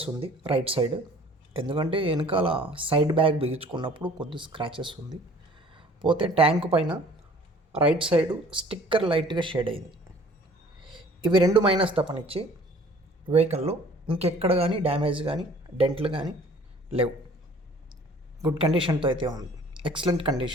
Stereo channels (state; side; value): normal; both; correlation 0.52